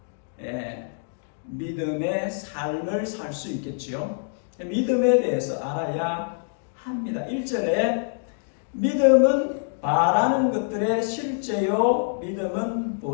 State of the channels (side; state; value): right; silent; digital silence